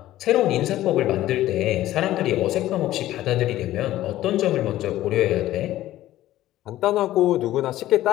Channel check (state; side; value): quieter; right; 14.5 dB